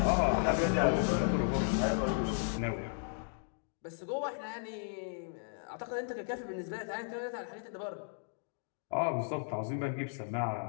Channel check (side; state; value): right; silent; digital silence